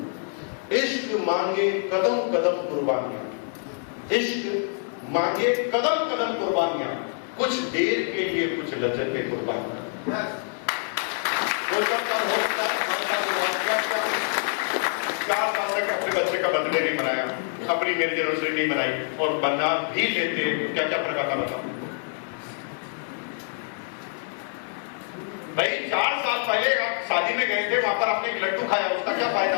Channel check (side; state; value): right; silent; 57 dB below the other